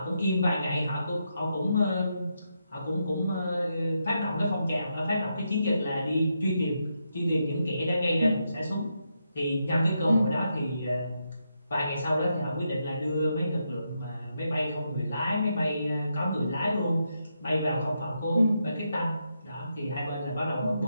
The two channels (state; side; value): inverted; both; correlation -0.82